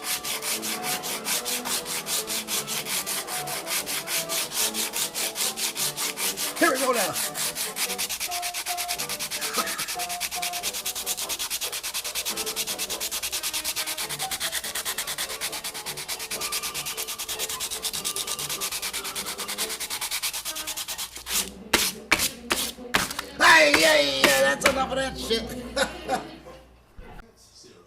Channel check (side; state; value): both; identical; correlation 1.00